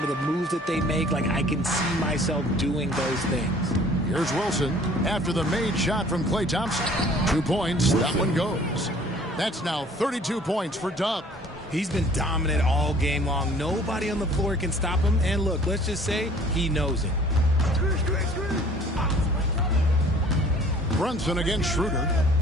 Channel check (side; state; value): both; normal; correlation 0.53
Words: of the moves that they make, like I can see myself doing those things. Here's Wilson after the made shot from Klay Thompson. 2 points, that one goes. That's now 32 points for Dub. He's been dominant all game long. Nobody on the floor can stop him. And look, let's just say he knows it. Brunson against Schroeder.